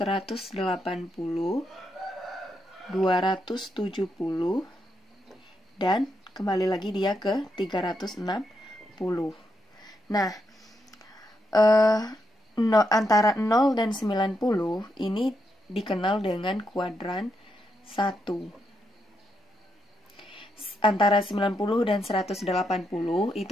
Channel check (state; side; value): normal; both; correlation 0.81